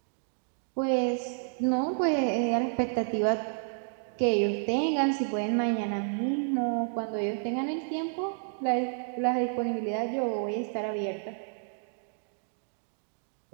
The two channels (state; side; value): silent; left; digital silence